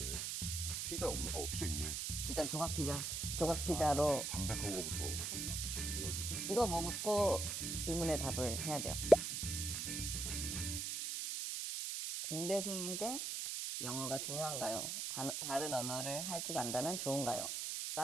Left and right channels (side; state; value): right; noise; hiss, 2 dB below the sound